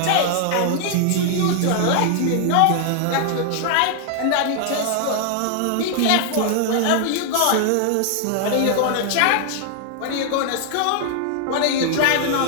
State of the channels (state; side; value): different; both; correlation 0.00